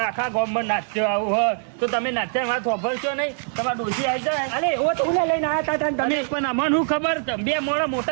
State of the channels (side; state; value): left; silent; 58 dB below the other